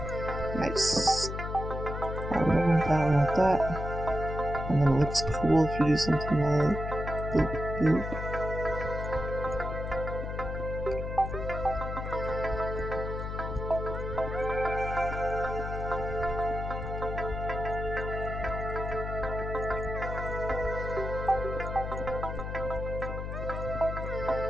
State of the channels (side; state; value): left; noise; hum, 5 dB below the sound